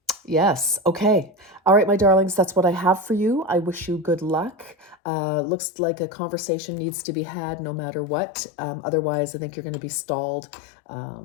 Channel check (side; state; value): right; drops out; at 5.0 s